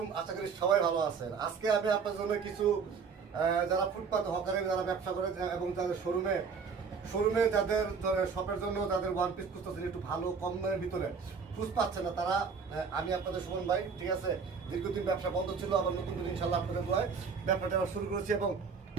আশা করি সবাই ভালো আছেন। আজকে আমি আপনার জন্য কিছু যারা ফুটপাত হকারের যারা ব্যবসা করে এবং যাদের শোরুমে যাদের শপের জন্য যাদের ওয়ান পিস খুঁজতেছেন একটু ভালো কম দামের ভিতরে খুঁজ পাচ্ছে না তারা, আমি আপনাদের সুমন ভাই, ঠিক আছে, দীর্ঘদিন ব্যবসা বন্ধ ছিল, আবার নতুন করে ইনশাল্লাহ আপনাদের দোয়ায় ব্যবসাটা আবার শুরু করেছি এবং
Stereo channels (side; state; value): left; quieter; 5.6 dB